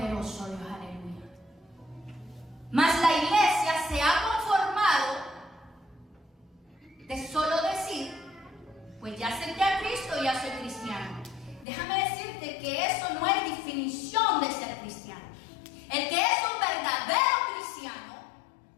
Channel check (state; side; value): drops out; right; at 11.7 s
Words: Dios, aleluya. Mas la iglesia se ha conformado de solo decir, pues ya acepté a Cristo y ya soy cristiano. Déjame decirte que eso no es definición de ser cristiano. El que es un verdadero cristiano